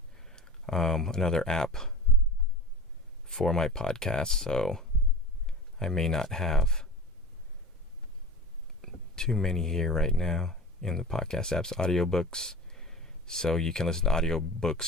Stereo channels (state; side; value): normal; both; correlation 0.33